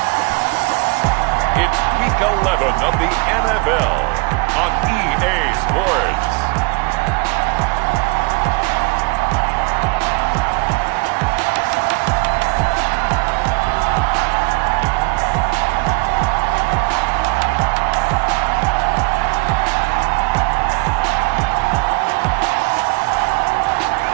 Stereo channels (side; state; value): left; quieter; 28.7 dB